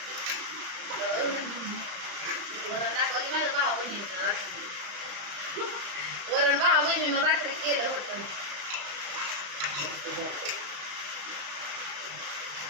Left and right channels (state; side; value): late; left; 34 ms